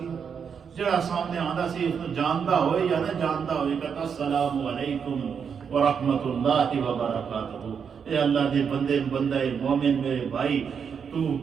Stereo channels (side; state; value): left; quieter; 6.8 dB